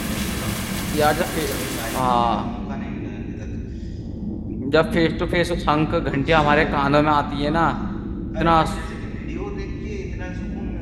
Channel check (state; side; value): identical; both; correlation 1.00